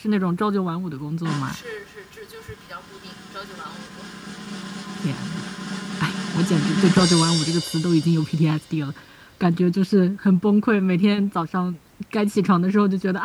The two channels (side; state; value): both; identical; correlation 1.00